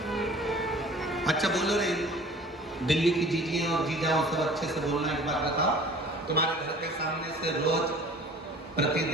अच्छा बोलो रे, दिल्ली की जीजियां और जीजाओं सब अच्छे से बोलना। एक बात बताओ, तुम्हारे घर के सामने से रोज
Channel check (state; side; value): normal; both; correlation 0.47